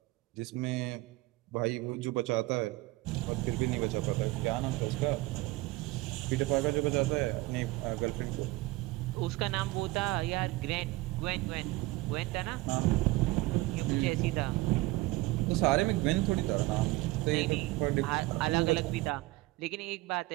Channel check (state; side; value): quieter; left; 20.2 dB